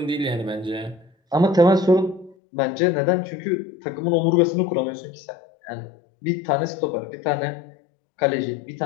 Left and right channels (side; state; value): right; drops out; at 2.4 s